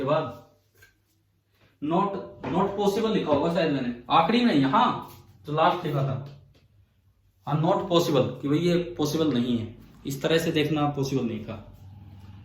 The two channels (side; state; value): both; identical; correlation 1.00